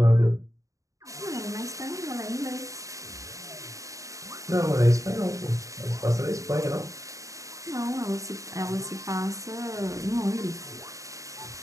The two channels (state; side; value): late; left; 0.16 ms